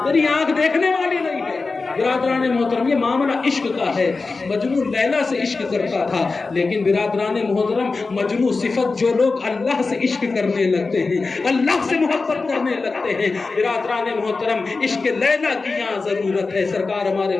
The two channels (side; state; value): right; quieter; 4.0 dB